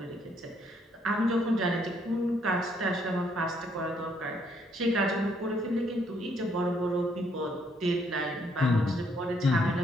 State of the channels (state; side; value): normal; both; correlation 0.70